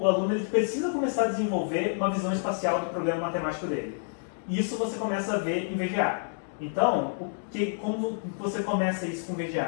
aluno ele precisa começar a desenvolver uma visão espacial do problema matemático dele. Isso você começa a ver em VGA. Então, como você começa isso com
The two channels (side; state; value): right; silent; digital silence